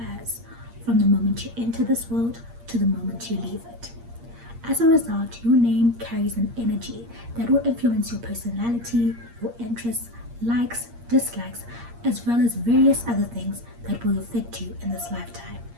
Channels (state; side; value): late; left; 8.6 ms